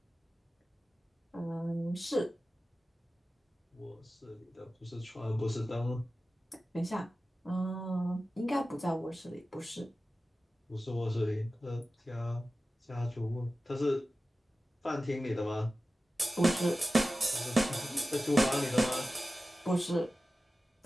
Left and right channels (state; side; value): normal; both; correlation 0.95